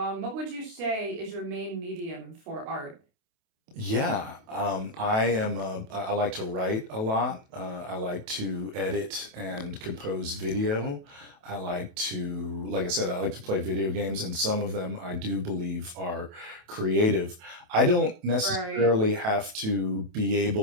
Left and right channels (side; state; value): left; late; 27 ms